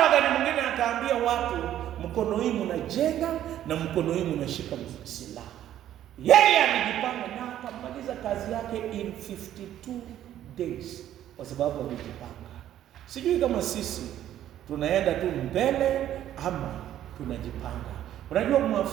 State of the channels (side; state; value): left; quieter; 11.8 dB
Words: wakati mwingine akaambia watu, mkono hii mnajenga na mkono hii mnashika silaha. Yeye alijipanga na akamaliza kazi yake in 52 days kwa sababu alijipanga. Sijui kama sisi tunaenda tu mbele ama tunajipanga. Unajua